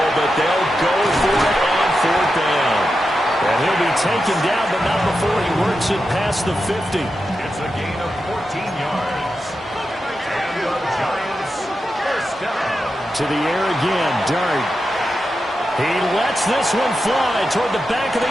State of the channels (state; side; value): normal; both; correlation 0.89